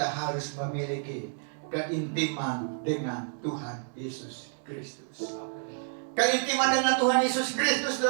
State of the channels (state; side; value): silent; left; digital silence